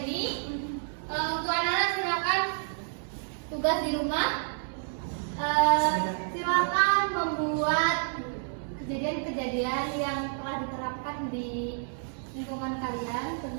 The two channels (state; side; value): silent; left; digital silence